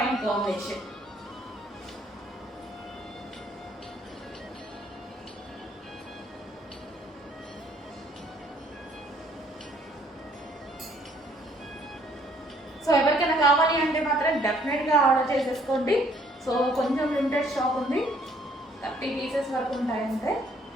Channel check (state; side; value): normal; both; correlation 0.63